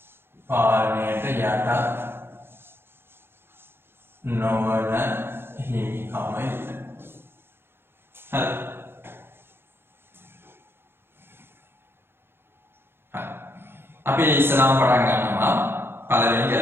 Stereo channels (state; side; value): late; left; 0.11 ms